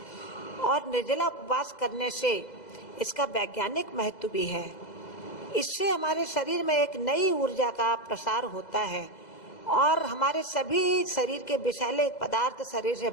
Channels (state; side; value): late; right; 2.0 ms